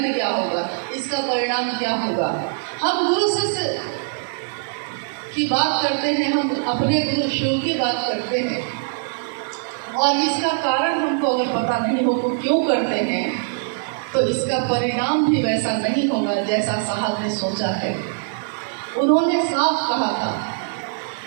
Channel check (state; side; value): silent; left; digital silence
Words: क्या होगा, इसका परिणाम क्या होगा। हम गुरु शिष्य की बात करते हैं, हम अपने गुरु शिव की बात करते हैं, और इसका कारण हमको अगर पता नहीं हो तो क्यों करते हैं, तो इसका परिणाम भी वैसा नहीं होगा जैसा साहब ने सोचा है। उन्होंने साफ कहा था